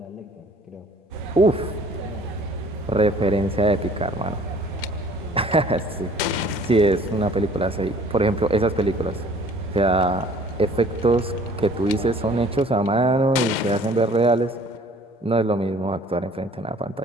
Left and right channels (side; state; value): both; normal; correlation 0.53